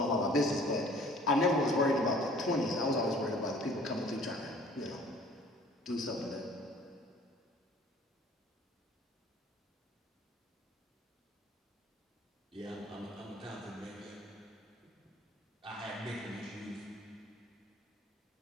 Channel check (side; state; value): both; normal; correlation 0.52